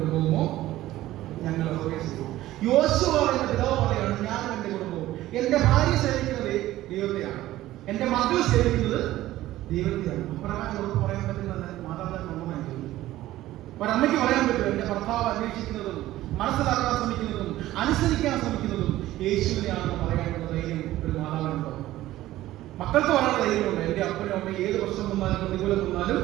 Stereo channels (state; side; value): quieter; left; 15.4 dB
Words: ഞങ്ങൾ പ്രവേശിക്കും. യോശുവ എന്റെ പിതാവ് പറയാണ്, ഞാനും എന്റെ കുടുംബവും. എന്റെ ഭാര്യ സേവിക്കുന്നത് ദൈവത്തെയാണ്, എന്റെ മകൾ സേവിക്കുന്നത് ദൈവത്തെയാണ്. അപ്രകാരം അവർക്ക് പറയാൻ പറ്റുന്ന മാതാപിതാക്കൾ ഒന്നായി ചോദിക്കും. ഒരമ്മയ്ക്ക് പറയാൻ പറ്റും, എന്റെ ഭർത്താവ് അന്വേഷിക്കുന്നതും മനസ്സിലാക്കാൻ ശ്രമിക്കുന്നതും അനുസരിക്കാൻ ശ്രമിക്കുന്നതും യേശുവിനെയാണെന്ന് പറയാനുള്ള ധൈര്യം ഒരു മാതാവിനുണ്ടോ? മക്കൾക്ക് പറയാനുള്ള ധൈര്യമുണ്ട്. എന്റെ അപ്പനും അമ്മയും ഏത് പ്രശ്നം വന്നാലും പ്രതികൂലം വന്നാലും